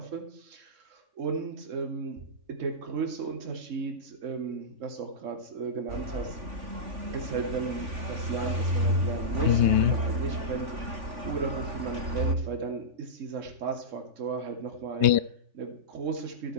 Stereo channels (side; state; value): left; late; 3.5 ms